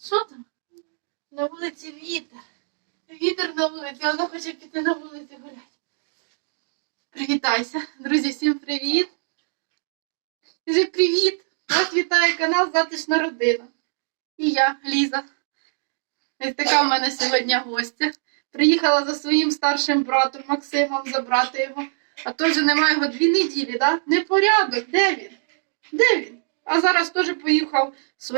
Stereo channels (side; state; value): left; silent; digital silence